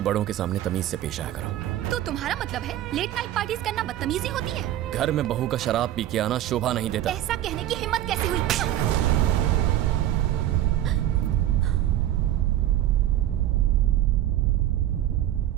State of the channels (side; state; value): left; quieter; 12.8 dB